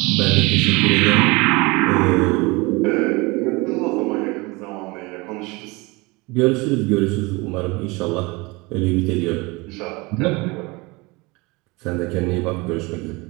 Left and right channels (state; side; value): quieter; left; 25.0 dB